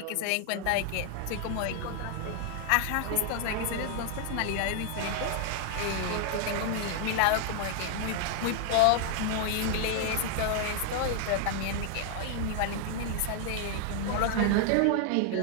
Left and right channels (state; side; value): different; both; correlation 0.00